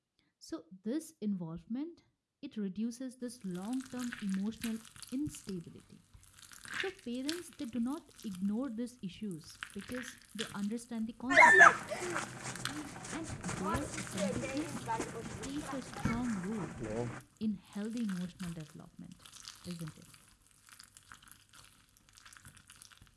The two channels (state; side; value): identical; both; correlation 1.00